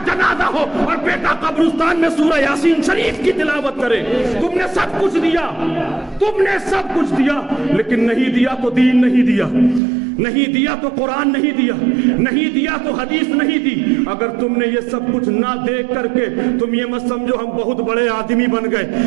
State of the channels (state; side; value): drops out; left; at 9.8 s